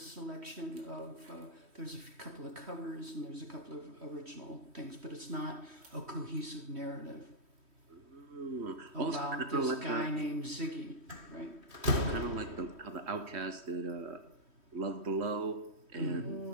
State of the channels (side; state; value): left; late; 3.1 ms